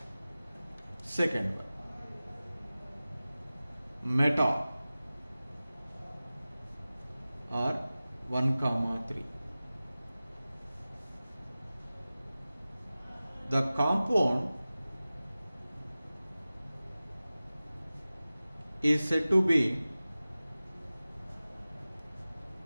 Second one, meta or 1, 3. The compound is said to be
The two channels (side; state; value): both; inverted; correlation -0.96